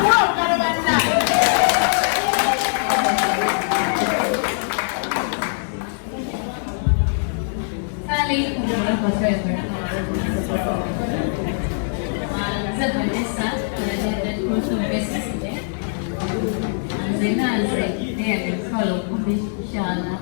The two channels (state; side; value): silent; right; digital silence